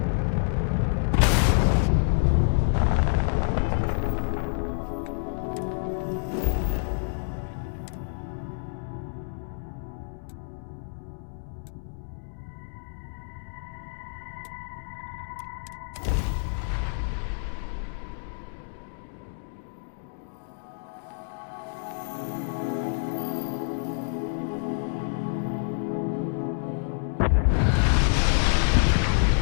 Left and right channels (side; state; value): right; silent; digital silence